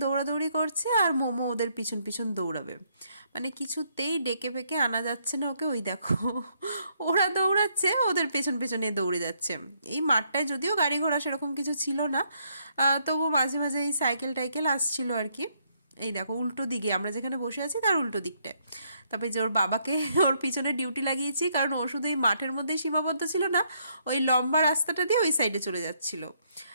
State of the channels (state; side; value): inverted; both; correlation -0.72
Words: দৌড়াদৌড়ি করছে, আর মোমো ওদের পিছন পিছন দৌড়াবে। মানে কিছুতেই ডেকে পেকে আনা যাচ্ছে না ওকে। ওই দেখো ওরা দৌড়াচ্ছে, ওদের পেছন পেছনে দৌড়ে যাচ্ছে। এই মাঠটায় যদিও গাড়ি ঘোড়া সেরকম কিছু ছিল না, তবু মাঝে মাঝে এই সাইকেল টাইকেল আসছিল আর কি। এই দেখো উল্টো দিকে, আমরা যেখানে বসে আছি তার উল্টো দিকটায়। তারপরে যে ওর বাবাকে ওর পিছনে ডিউটি লাগিয়েছি, কারণ ও শুধু এই মাঠের মধ্যেই সীমাবদ্ধ ছিল না, ওই লম্বা রাস্তাটা দিয়ে ওই সাইডে চলে যাচ্ছিল।